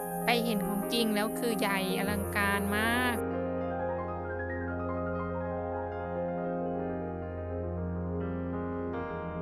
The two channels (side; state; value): both; identical; correlation 1.00